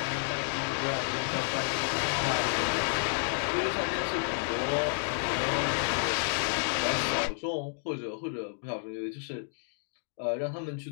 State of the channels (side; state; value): right; silent; digital silence